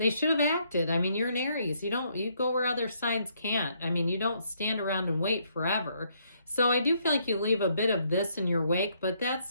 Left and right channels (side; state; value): both; inverted; correlation -0.71